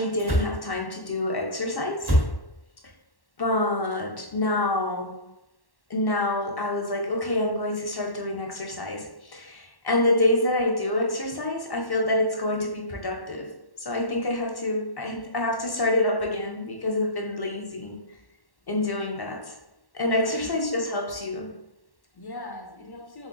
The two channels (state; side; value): late; right; 1.1 ms